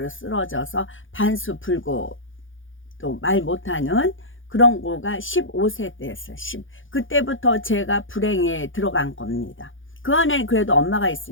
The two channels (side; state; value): right; late; 0.57 ms